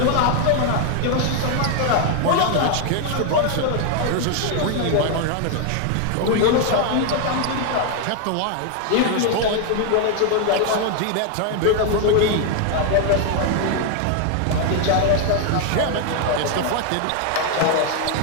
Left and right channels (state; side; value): different; both; correlation 0.01